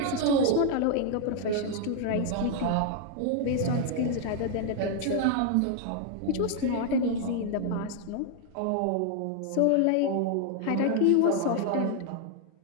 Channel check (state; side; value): different; both; correlation 0.00